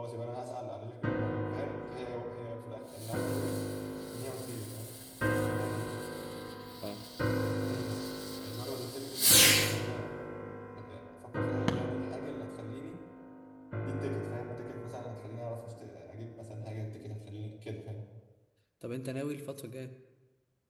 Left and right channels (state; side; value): identical; both; correlation 1.00